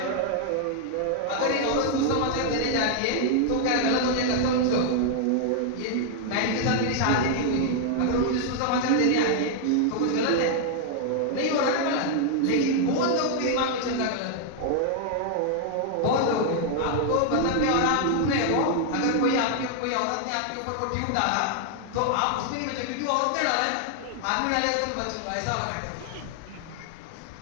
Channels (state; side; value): different; both; correlation 0.00